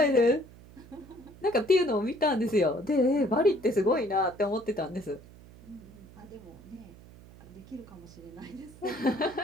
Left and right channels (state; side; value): noise; right; hum, 21 dB below the sound